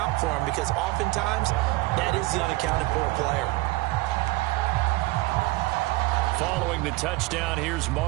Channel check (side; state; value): left; quieter; 20.5 dB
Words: for him, because oftentimes that is the unaccounted for player. Following the touchdown, here's